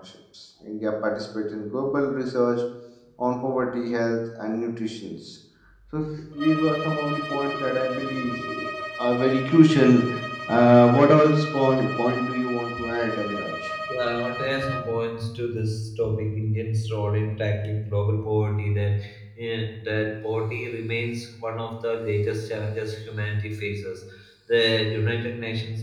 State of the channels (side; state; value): both; identical; correlation 1.00